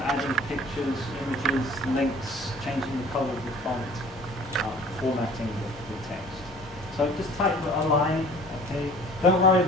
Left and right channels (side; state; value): both; normal; correlation 0.49